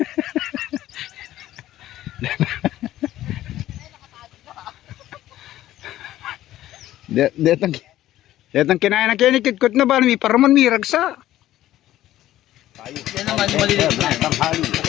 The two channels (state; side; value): quieter; right; 14.0 dB